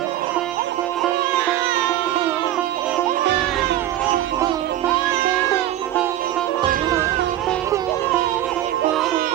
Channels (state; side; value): quieter; left; 13.3 dB